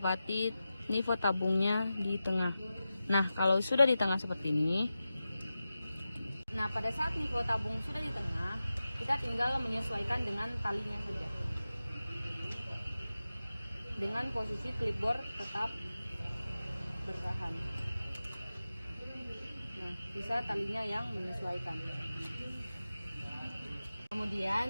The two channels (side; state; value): both; inverted; correlation -0.93